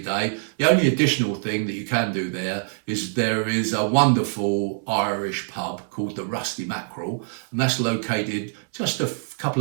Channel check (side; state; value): left; silent; digital silence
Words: day. The only additional thing that you can do there is a wonderful Irish pub called the Rusty Mackerel, and that's located just a couple